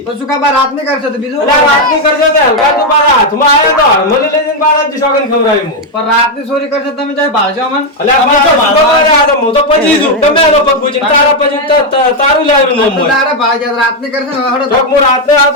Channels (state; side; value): normal; both; correlation 0.03